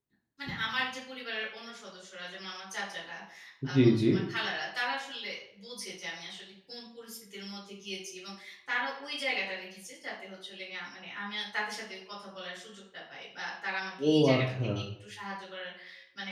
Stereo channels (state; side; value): identical; both; correlation 1.00